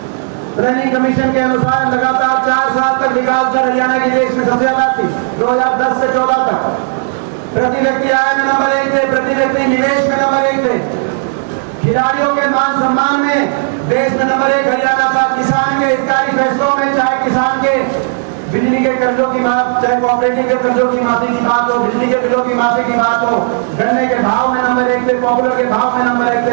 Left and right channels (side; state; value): left; silent; 70 dB below the other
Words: प्लानिंग कमीशन के अनुसार लगातार 4 साल तक विकास दर हरियाणा की देश में सबसे ज्यादा थी। 2010 से 14 तक प्रति व्यक्ति आय में नंबर 1 थे, प्रति व्यक्ति निवेश में नंबर 1 थे, खिलाड़ियों के मान सम्मान में देश में नंबर 1 हरियाणा था। किसान के हितकारी फैसलों में, चाहे किसान के बिजली के कर्जों की बात, चाहे कोऑपरेटिव के कर्जों की माफी की बात हो, बिजली के बिलों की माफी की बात हो, गन्ने के भाव में नंबर 1 थे, पॉपुलर के भाव में नंबर 1